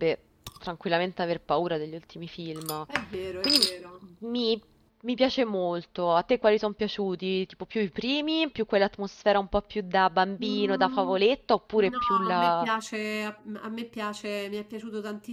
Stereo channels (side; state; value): both; identical; correlation 1.00